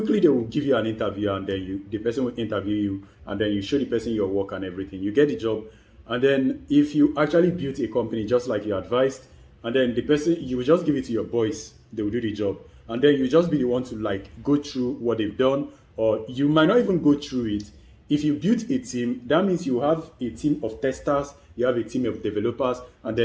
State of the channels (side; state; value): both; identical; correlation 1.00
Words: they will give you an interview, and then the person will interview you, and then you show the person your work and everything. You get the job, and then if you actually built a company just like you advised, and then the person, you will just give it to your boys, they will do the job, and then you just be the one to like go through what they've done, or you might not even go through it. If you build a team, that means you have a team of testers, you have a team of developers, and